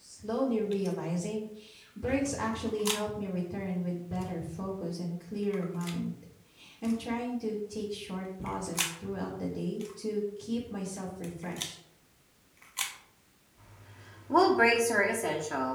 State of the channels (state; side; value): identical; both; correlation 1.00